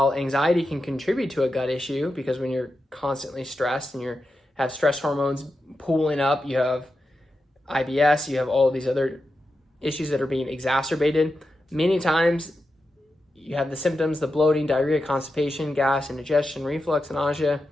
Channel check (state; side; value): normal; both; correlation 0.89